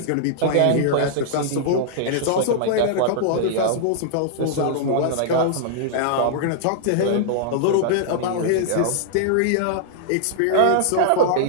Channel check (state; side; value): different; both; correlation -0.01